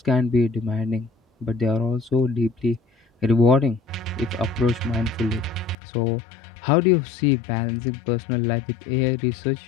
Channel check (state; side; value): drops out; right; at 5.8 s